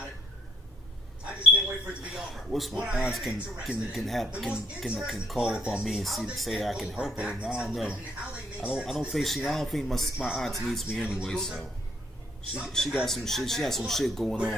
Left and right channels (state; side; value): normal; both; correlation 0.67